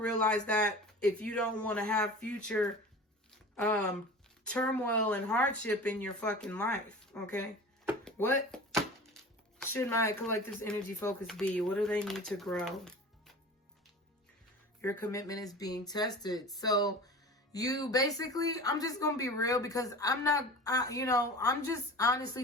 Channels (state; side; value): normal; both; correlation 0.36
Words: that if you don't want to have future turmoil and hardship in your fucking life. Okay? What should my collective's energy focus be? What do they need to grow? Your commitment is being tested. So you basically, I'm just going to be real, because I'm just,